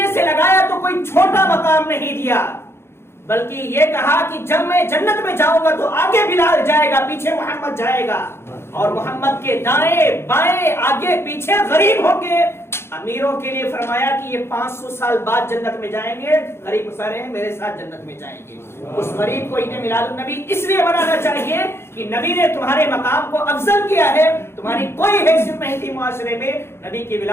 سے لگایا تو کوئی چھوٹا مقام نہیں دیا، بلکہ یہ کہا کہ جب میں جنت میں جاؤں گا تو آگے بلال جائے گا، پیچھے محمد جائے گا، اور محمد کے دائیں بائیں آگے پیچھے غریب ہوں گے۔ امیروں کے لیے فرمایا کہ یہ 500 سال بعد جنت میں جائیں گے، غریب سارے ہیں میرے ساتھ جنت میں جائیں گے۔ اس غریب کو عید میلاد النبی اس لیے منانا چاہیے کہ نبی نے تمہارے مقام کو افضل کیا ہے، تمہاری کوئی حیثیت نہیں تھی معاشرے میں۔ نبی کی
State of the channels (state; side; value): late; right; 0.12 ms